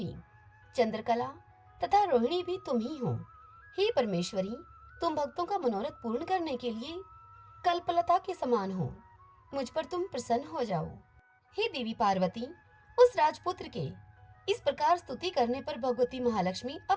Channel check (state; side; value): identical; both; correlation 1.00